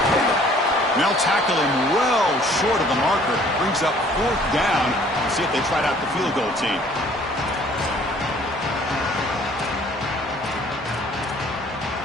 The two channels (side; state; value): both; normal; correlation 0.56